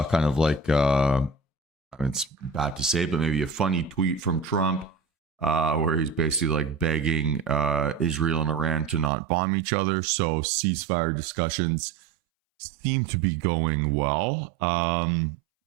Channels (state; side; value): drops out; left; at 9.1 s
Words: kind of like I mean, it's bad to say, but maybe a funny tweet from Trump where he's basically like begging Israel and Iran to not bomb each other. So ceasefire discussions seem to be going well. I